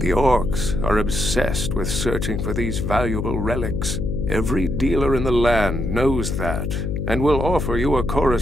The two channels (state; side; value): noise; left; hum, 2 dB below the sound